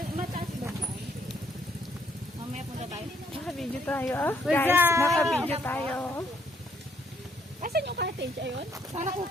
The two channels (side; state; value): both; normal; correlation 0.69